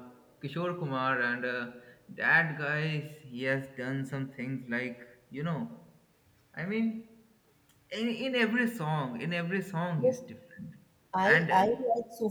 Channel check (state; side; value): identical; both; correlation 1.00